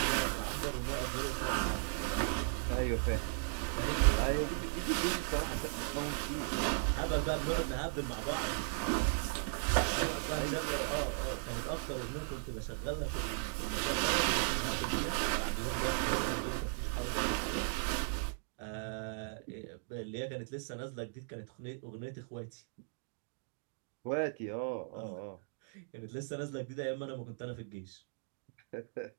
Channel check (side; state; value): left; silent; digital silence